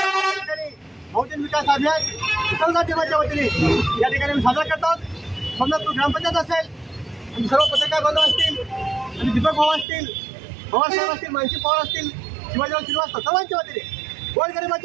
बहुजन विकास अभियान मुसलमान टीमाच्या वतीने या ठिकाणी आम्ही साजरा करत आहोत। सोमनाथपूर ग्रामपंचायत असेल आणि सर्व पत्रकार बांधव असतील आणि दीपक भाऊ असतील, पवारसाहेब असतील, मानसी पवार असतील, शिवाजीराव श्रीवास्तव सर्वांच्या वतीने,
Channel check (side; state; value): left; drops out; at 9.9 s